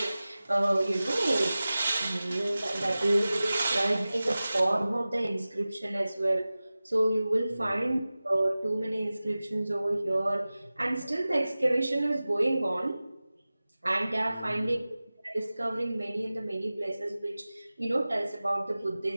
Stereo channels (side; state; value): both; inverted; correlation -0.97